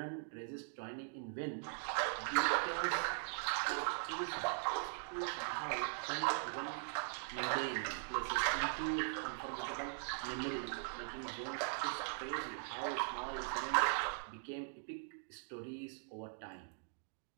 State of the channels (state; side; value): silent; left; digital silence